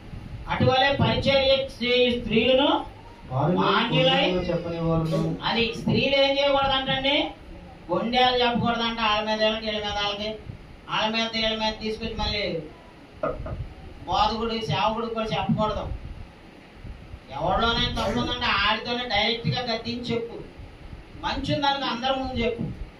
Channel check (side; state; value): both; identical; correlation 1.00